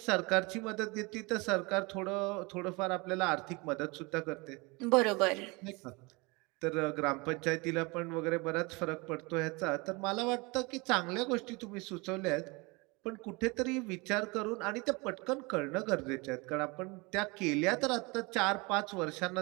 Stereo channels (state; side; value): quieter; left; 26.7 dB